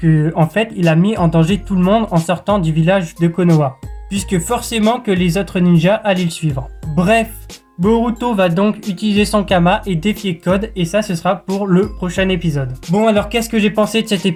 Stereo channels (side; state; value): both; identical; correlation 1.00